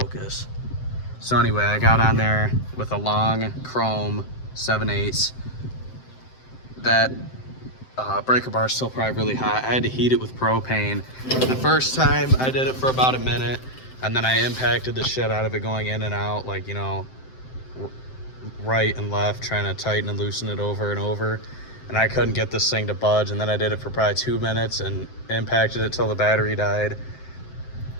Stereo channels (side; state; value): right; late; 7.7 ms